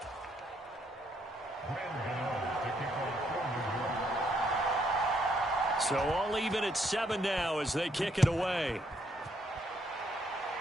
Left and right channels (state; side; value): normal; both; correlation 0.72